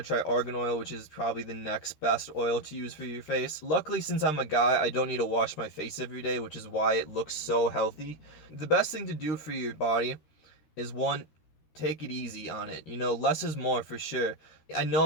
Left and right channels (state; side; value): late; right; 13 ms